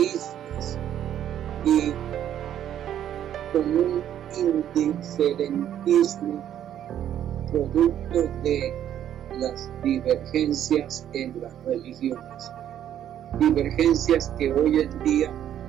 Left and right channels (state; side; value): quieter; left; 10.6 dB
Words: y con un indiferentismo producto de las divergencias en las religiones, divergencias que hoy en día